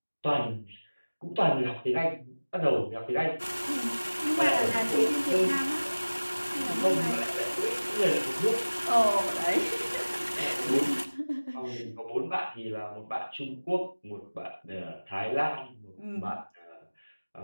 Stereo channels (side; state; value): both; inverted; correlation -1.00